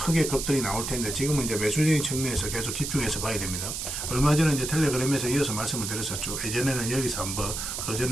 급등이 나올 텐데 지금은 이제 매수적인 측면에서 계속 집중해서 봐야 됩니다. 얼마 전에 이제 텔레그램에서 이어서 말씀을 드렸었죠. 예전에는 여기서 한번, 그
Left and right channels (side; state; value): right; noise; hiss, 4 dB below the sound